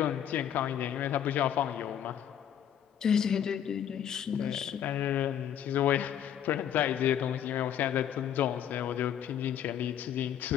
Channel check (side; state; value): right; quieter; 9.7 dB